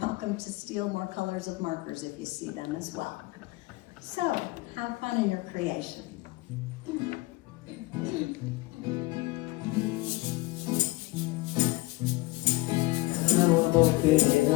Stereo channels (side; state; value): right; quieter; 21.6 dB